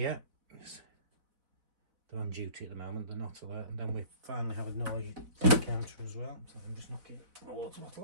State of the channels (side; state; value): left; late; 4.0 ms